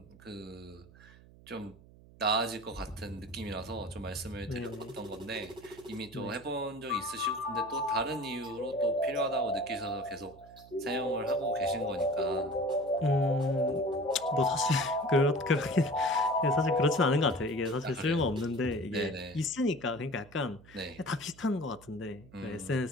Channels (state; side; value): noise; right; hum, 23 dB below the sound